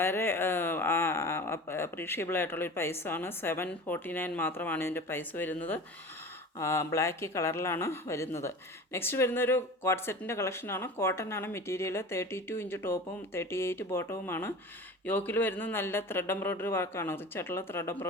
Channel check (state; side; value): normal; both; correlation 0.36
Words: അപ്രീഷിയബിൾ ആയിട്ടുള്ളൊരു പ്രൈസാണ്. 749 മാത്രമാണ് ഇതിൻ്റെ പ്രൈസ് വരുന്നത്. ബ്ലാക്ക് കളറിലാണ് വരുന്നത്. നെക്സ്റ്റ് വരുന്നൊരു കോട്ട് സെറ്റിൻ്റെ കളക്ഷനാണ്. കോട്ടൺ ആണ് മെറ്റീരിയൽ. 32 ഇഞ്ച് ടോപ്പും 38 ബോട്ടവുമാണ്. യോക്കിൽ വരുന്നത് നല്ല ത്രെഡ് എംബ്രോയ്ഡറി വർക്കാണ്, റിച്ചായിട്ടുള്ള ത്രെഡ്